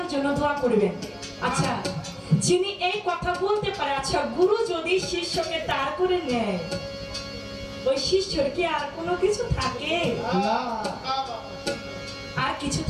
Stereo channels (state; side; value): identical; both; correlation 1.00